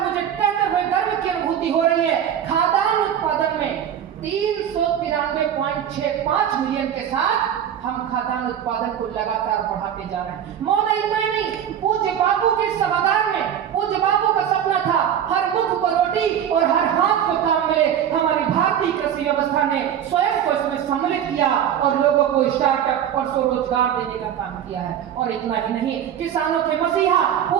कहते हुए गर्व की अनुभूति हो रही है, खाद्यान्न उत्पादन में 393.65 मिलियन के साथ हम खाद्यान्न उत्पादन को लगातार बढ़ाते जा रहे हैं। महोदय, इतना ही नहीं, पूज्य बापू के सभागार में पूज्य बापू का सपना था हर मुख को रोटी और हर हाथ को काम मिले। हमारी भारतीय कृषि व्यवस्था ने स्वयं को इसमें सम्मिलित किया और लोगों को स्टार्टअप और स्वरोजगार देने का काम किया है। और इतना ही नहीं, किसानों के मसीहा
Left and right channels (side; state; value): left; quieter; 9.5 dB